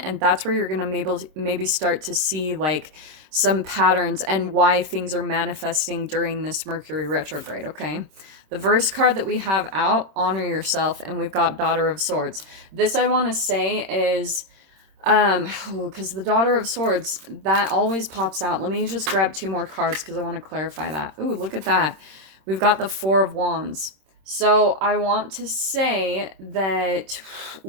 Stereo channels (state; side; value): late; left; 26 ms